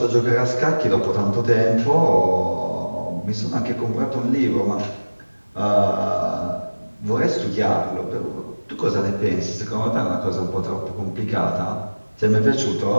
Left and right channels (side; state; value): both; inverted; correlation -1.00